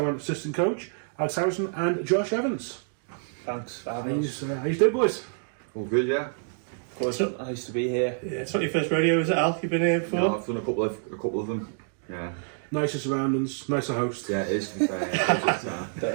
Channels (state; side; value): silent; left; digital silence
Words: assistant coach, Alex Harrison and Josh Evans. Thanks for having us. How you doing, boys? All good, yeah. Of course, nice to be here. Yeah, it's not your first rodeo, is it, Al? You've been here before? No, I've done a couple of them. Yeah. Nicer surroundings, nicer host. Yeah, it is, to be fair. Don't